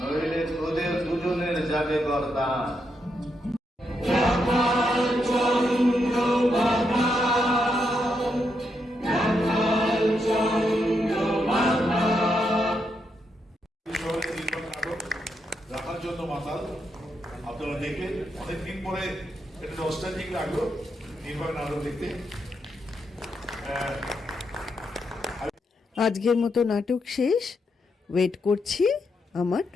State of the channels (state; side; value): normal; both; correlation 0.81